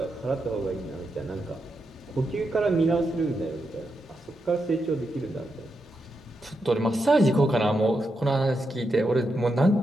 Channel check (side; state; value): both; normal; correlation 0.85